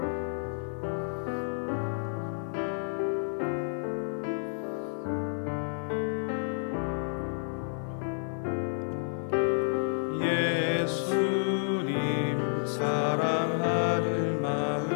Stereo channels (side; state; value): right; silent; digital silence